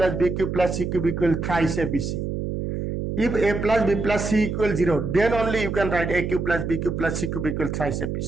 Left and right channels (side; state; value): right; noise; hum, 3 dB below the sound